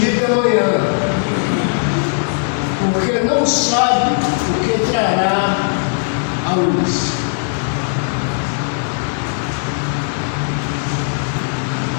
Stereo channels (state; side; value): silent; right; digital silence